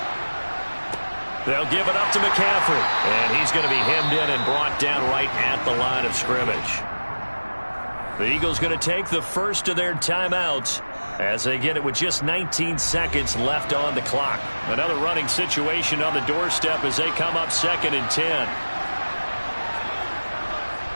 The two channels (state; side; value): inverted; both; correlation -1.00